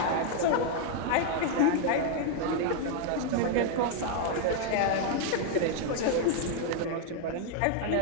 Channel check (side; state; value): both; different; correlation 0.00